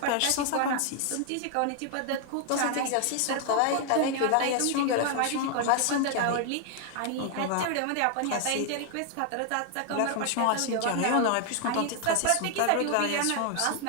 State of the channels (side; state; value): both; different; correlation 0.00